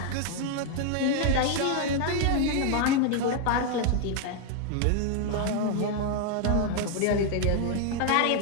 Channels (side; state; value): both; different; correlation 0.00